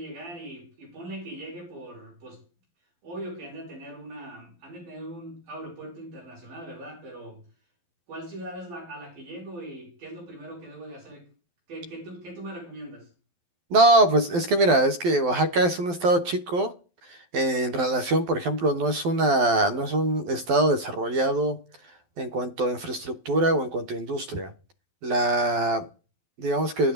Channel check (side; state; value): left; late; 12 ms